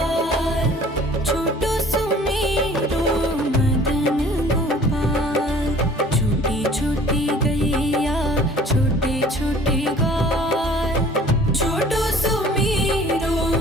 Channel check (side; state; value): both; normal; correlation 0.51